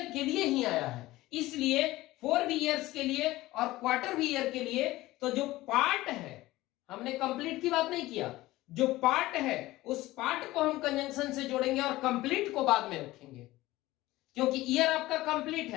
के लिए ही आया है, इसलिए 4 भी ईयर्स के लिए और क्वार्टर भी ईयर के लिए। तो जो पार्ट है, हमने कंप्लीट की बात नहीं किया, जो पार्ट है उस पार्ट को हम कंजंक्शन से जोड़ेंगे और कंप्लीट को बाद में रखेंगे, क्योंकि ईयर आपका कंप्लीट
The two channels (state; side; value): quieter; right; 17.7 dB